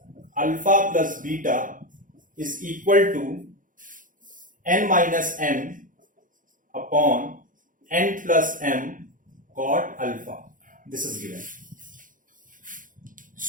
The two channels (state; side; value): late; left; 0.39 ms